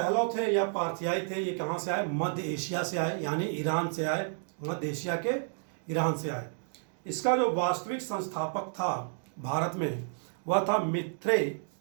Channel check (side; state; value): left; silent; digital silence